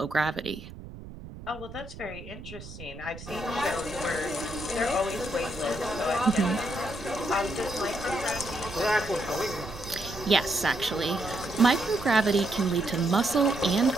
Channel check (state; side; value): noise; right; rumble, 14 dB below the sound